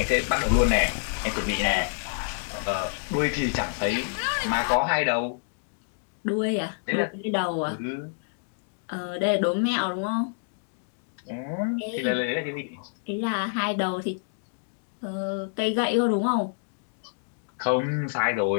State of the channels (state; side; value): silent; right; digital silence